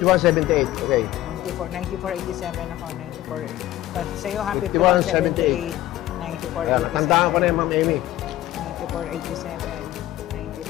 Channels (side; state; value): right; quieter; 14.8 dB